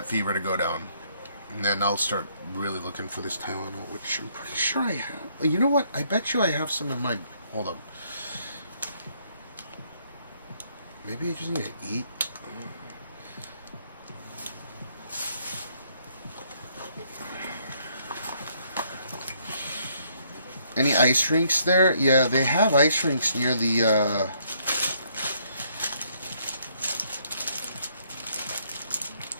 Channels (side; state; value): both; inverted; correlation -0.68